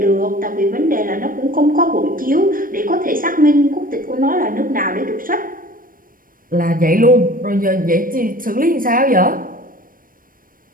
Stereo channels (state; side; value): late; left; 0.41 ms